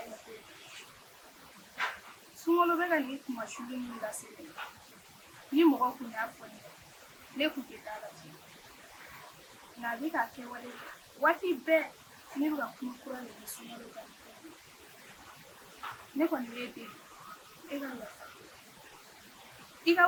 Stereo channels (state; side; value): identical; both; correlation 1.00